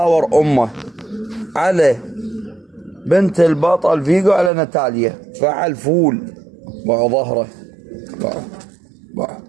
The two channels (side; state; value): left; drops out; at 4.5 s